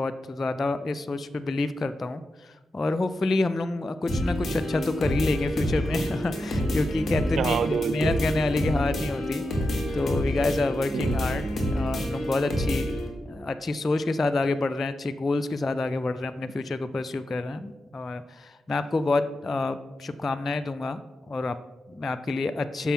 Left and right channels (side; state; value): both; normal; correlation 0.89